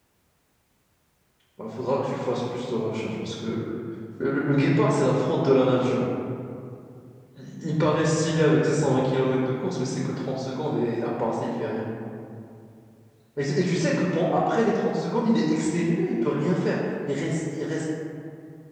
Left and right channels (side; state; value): both; identical; correlation 1.00